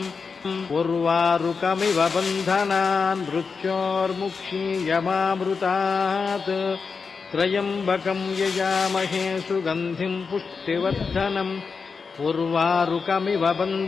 उर्वारुकमिव बन्धनान् मृत्योर्मुक्षीयमामृतात् त्र्यम्बकं यजामहे सुगन्धिं पुष्टिवर्धनम् उर्वारुकमिव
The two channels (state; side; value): quieter; right; 5.1 dB